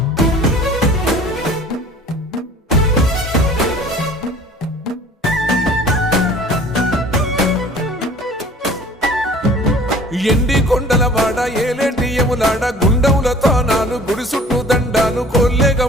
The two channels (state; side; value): normal; both; correlation 0.48